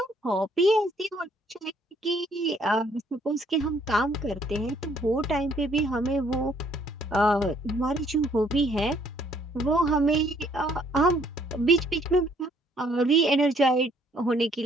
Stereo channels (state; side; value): normal; both; correlation 0.64